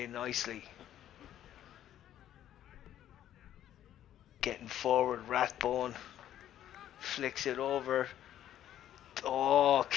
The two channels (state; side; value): quieter; right; 11.6 dB